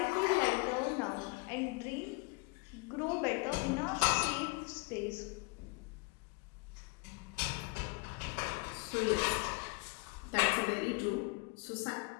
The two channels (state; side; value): quieter; right; 27.5 dB